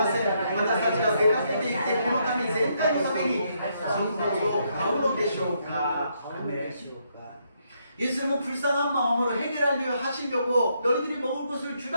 せん。私たちが出かけていってこの民全体のためにそのことを買うのでしょうか。 예수님은 불쌍한 마음으로 해결하려 하시려고 너희들이 먹을 것을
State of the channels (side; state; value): both; inverted; correlation -0.75